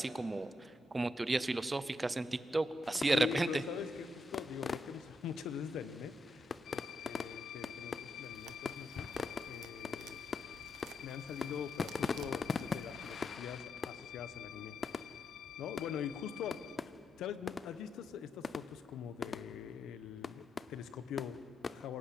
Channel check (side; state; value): both; normal; correlation 0.82